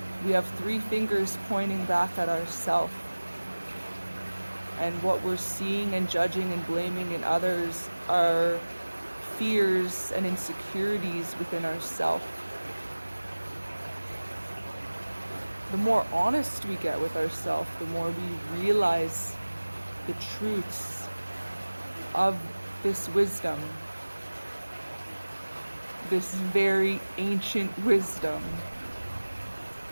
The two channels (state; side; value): inverted; both; correlation -1.00